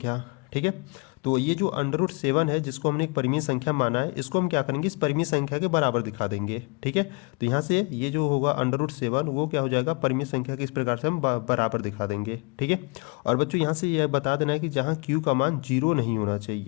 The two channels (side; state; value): right; quieter; 31.1 dB